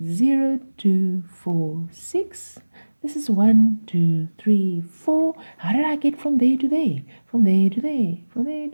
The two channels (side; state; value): both; inverted; correlation -1.00